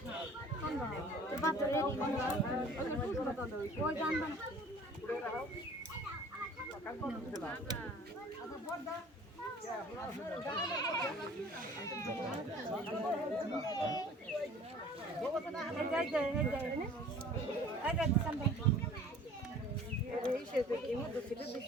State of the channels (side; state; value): both; normal; correlation 0.48